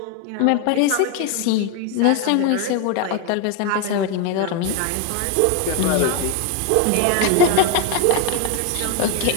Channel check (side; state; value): both; different; correlation 0.01